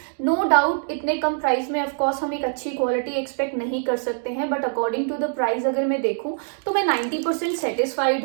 नो डाउट इतने कम प्राइस में ऑफकोर्स हम एक अच्छी क्वालिटी एक्सपेक्ट नहीं कर सकते हैं, but according to the price अगर मैं देखूं तो मैं 90%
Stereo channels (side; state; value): left; silent; digital silence